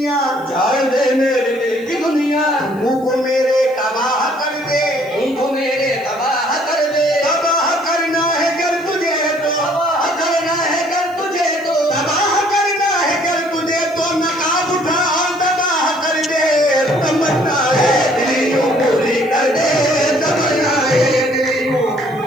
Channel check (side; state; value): left; noise; hiss, 28 dB below the sound